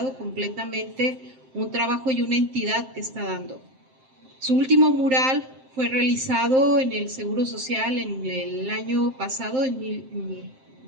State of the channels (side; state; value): left; late; 7.6 ms